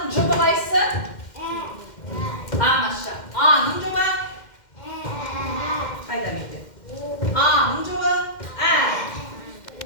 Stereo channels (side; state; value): right; late; 2.1 ms